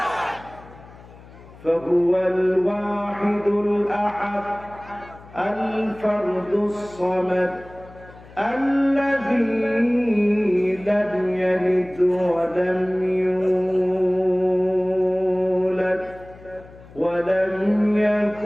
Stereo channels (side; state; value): left; noise; hum, 21 dB below the sound